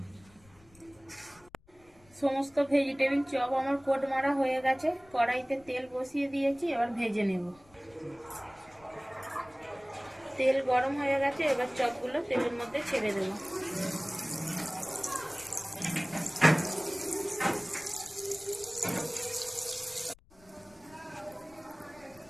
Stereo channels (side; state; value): left; noise; rumble, 28 dB below the sound